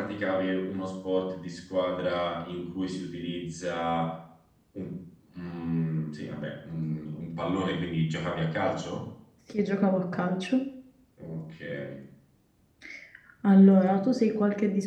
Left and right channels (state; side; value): identical; both; correlation 1.00